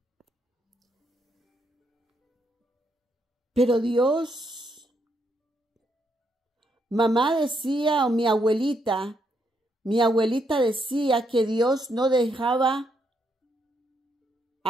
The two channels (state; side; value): normal; both; correlation 0.77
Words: Pero Dios, mamá decía, o mi abuelita decía que Dios no dejaba